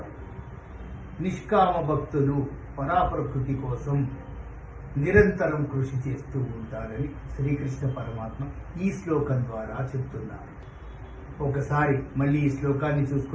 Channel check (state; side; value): identical; both; correlation 1.00